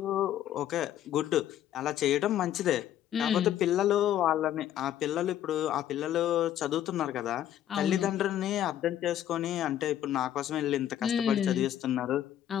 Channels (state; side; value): quieter; right; 11.3 dB